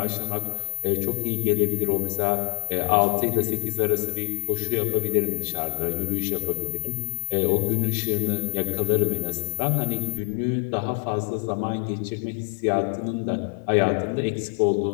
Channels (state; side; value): silent; right; digital silence